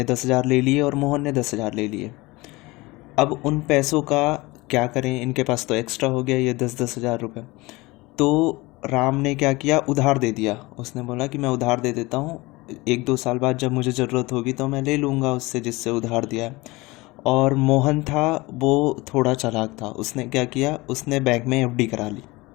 10,000 ले लिए और मोहन ने 10,000 ले लिए। अब उन पैसों का क्या करें, इनके पास तो एक्स्ट्रा हो गया ये 10,000 रुपये। तो राम ने क्या किया, उधार दे दिया। उसने बोला कि मैं उधार दे देता हूँ, 1-2 साल बाद जब मुझे ज़रूरत होगी तो मैं ले लूँगा उससे जिससे उधार दिया है। और मोहन था, वो थोड़ा चालाक था। उसने क्या किया, उसने बैंक में एफडी करा ली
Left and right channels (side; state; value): right; quieter; 22.3 dB